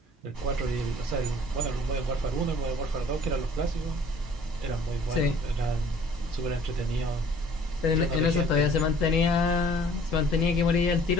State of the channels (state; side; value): normal; both; correlation 0.54